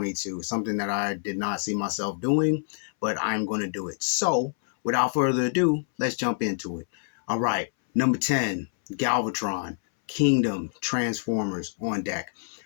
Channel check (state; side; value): silent; right; 61 dB below the other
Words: something that I did not see myself doing, but I'm going to do it. So, without further ado, let's jump into it. All right, number 10, Galvatron, Kingdom, Transformers on deck.